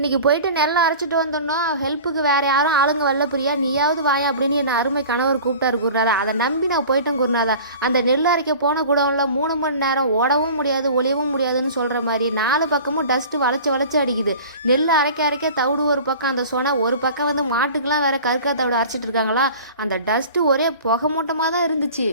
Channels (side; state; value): both; inverted; correlation -0.41